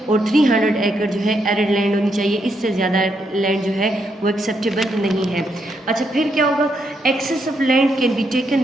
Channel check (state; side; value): normal; both; correlation 0.78